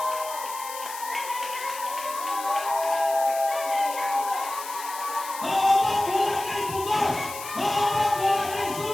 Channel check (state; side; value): noise; left; hiss, 11 dB below the sound